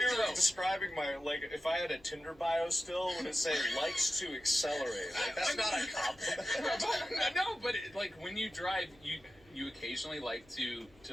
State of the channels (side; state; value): left; noise; hum, 28 dB below the sound